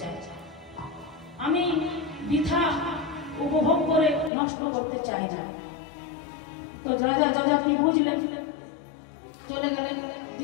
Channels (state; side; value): drops out; right; at 4.3 s